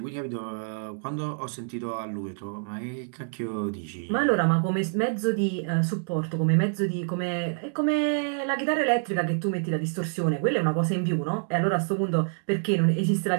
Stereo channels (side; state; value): left; silent; digital silence